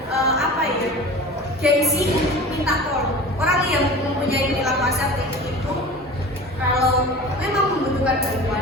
gengsi minta tolong. Orang yang mempunyai perilaku asertif itu kalau memang membutuhkan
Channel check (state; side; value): normal; both; correlation 0.37